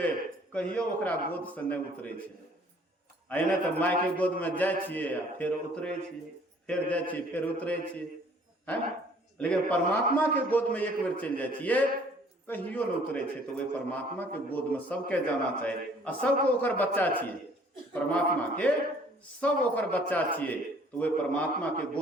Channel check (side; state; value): both; normal; correlation 0.57